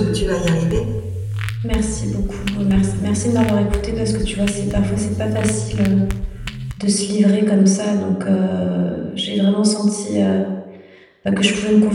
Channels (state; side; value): identical; both; correlation 1.00